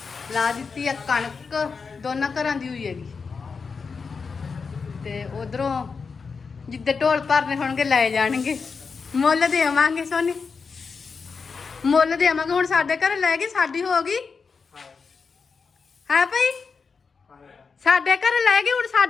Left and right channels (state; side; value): quieter; right; 5.2 dB